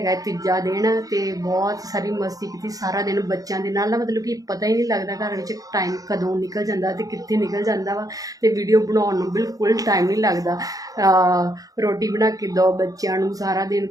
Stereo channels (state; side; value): late; left; 0.17 ms